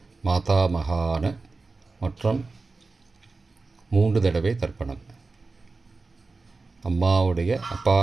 மாதாமகான மற்றும் 3 தடவை தர்ப்பணம். அம்மாவுடைய அப்பா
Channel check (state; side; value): quieter; left; 3.8 dB